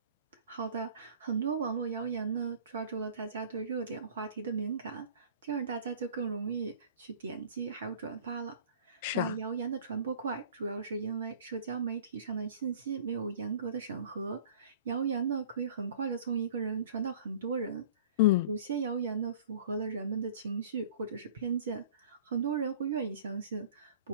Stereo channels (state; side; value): inverted; both; correlation -0.44